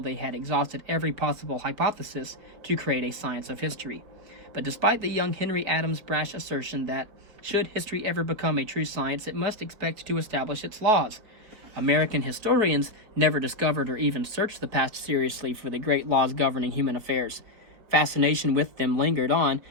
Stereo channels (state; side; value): late; left; 5.0 ms